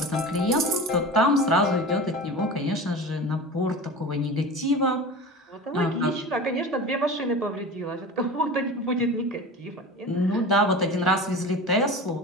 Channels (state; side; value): normal; both; correlation 0.32